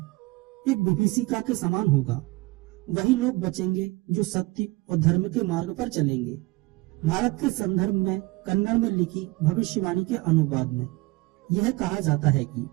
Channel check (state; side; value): quieter; left; 22.3 dB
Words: एक विभीषिका के समान होगा। वही लोग बचेंगे जो सत्य और धर्म के मार्ग पर चलेंगे। भारत के संदर्भ में कन्नड़ में लिखी भविष्यवाणी के अनुवाद में यह कहा जाता है कि